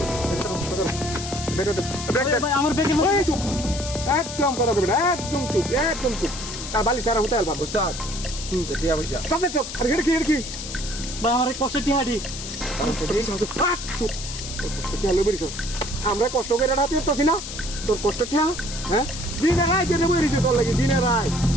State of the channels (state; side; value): noise; left; hiss, 9 dB below the sound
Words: ভাই আমার বেগে চুপ একদম কথা কইবি না একদম চুপ আর বালি সারা হতে পারবা উস্তাদ টিয়া পয়সা চুপ আর কি ভাই আমার কষ্ট টিহাডি আমরা কষ্ট করে রাতে উঠতেছি না তোর কষ্ট ঠিয়া হ্যাঁ দিনে রায় দিনে বইরিছে তোর লাগে দিনে রায়